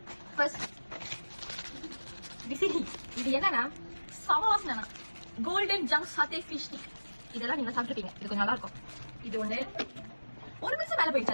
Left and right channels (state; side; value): inverted; both; correlation -1.00